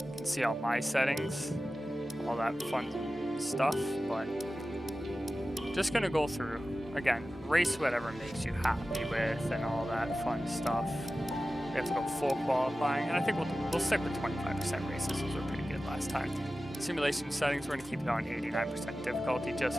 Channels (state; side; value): normal; both; correlation 0.95